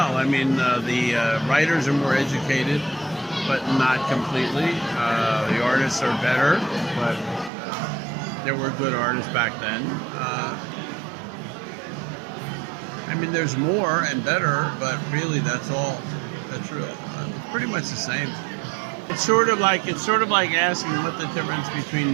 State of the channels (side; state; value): left; drops out; at 7.5 s